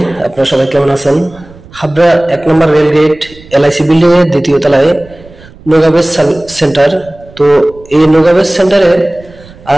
আপনারা সবাই কেমন আছেন? হাবড়া 1 নম্বর রেলগেট এলআইসি বিল্ডিং এর দ্বিতীয় তলায় নোগাবেজ সেন্টার। তো এই নোগাবেজ সেন্টারে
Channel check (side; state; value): right; noise; rumble, 23 dB below the sound